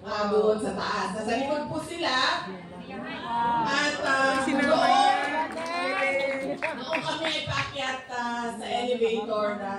doon sa taas. Nasa likod po sila. At noong kami ay paakyat sa elevator,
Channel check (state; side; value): identical; both; correlation 1.00